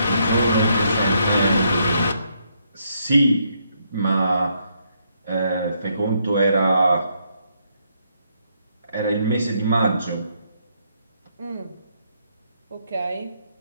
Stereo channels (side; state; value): both; inverted; correlation -0.74